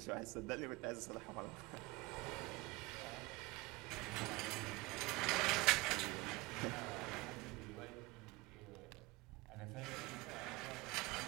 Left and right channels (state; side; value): quieter; left; 22.9 dB